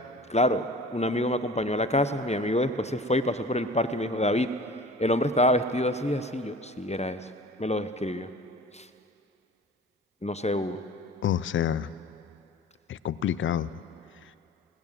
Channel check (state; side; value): normal; both; correlation 0.42